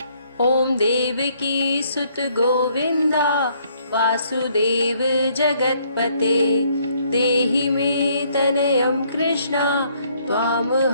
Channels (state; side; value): inverted; both; correlation -0.67